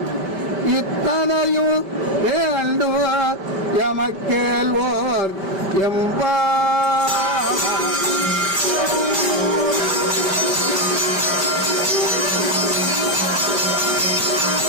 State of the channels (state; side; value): late; left; 5.1 ms